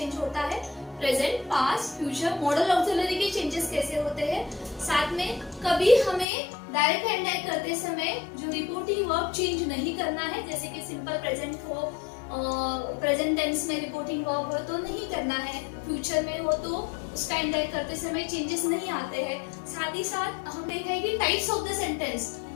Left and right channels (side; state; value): right; drops out; at 6.2 s